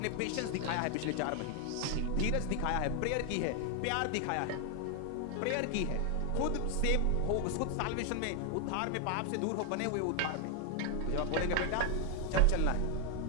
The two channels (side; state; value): both; different; correlation 0.01